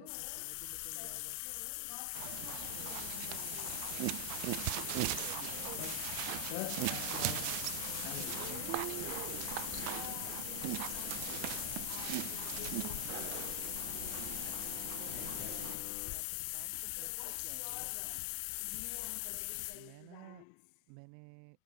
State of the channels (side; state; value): both; different; correlation 0.00